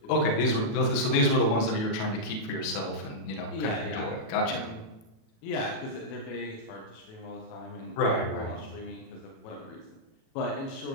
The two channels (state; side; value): late; right; 37 ms